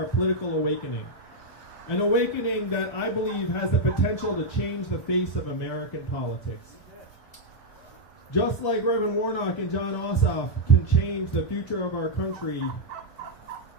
political awakening. An awakening that I believe has the potential to change the face of American politics. Just like Reverend Warnock and John Ossoff can change the future of our country,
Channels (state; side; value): late; right; 2.5 ms